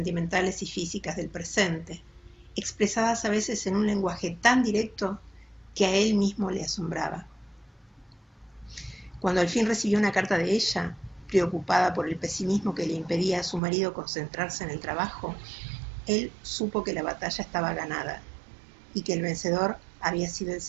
y físicas del presente, expresadas a veces en un lenguaje tan directo que a él mismo le asombraba. Cuando al fin recibió una carta de ella, preocupada por el pesimismo que le impedía a su marido concentrarse en el trabajo, él supo que la batalla estaba ganada y que el vencedor había sido el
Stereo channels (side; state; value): left; drops out; at 13.6 s